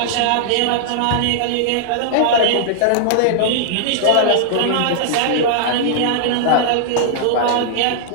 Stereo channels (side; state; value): both; different; correlation -0.01